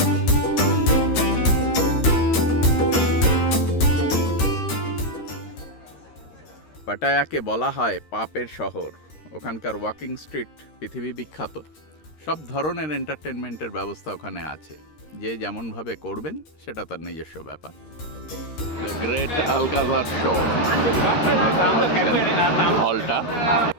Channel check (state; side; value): late; right; 13 ms